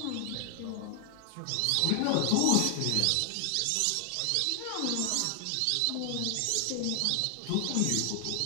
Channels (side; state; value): both; different; correlation 0.00